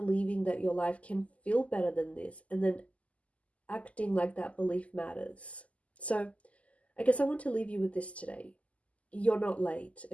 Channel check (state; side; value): late; right; 0.067 ms